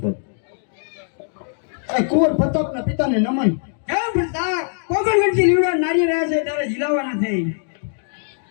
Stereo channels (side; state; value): right; silent; digital silence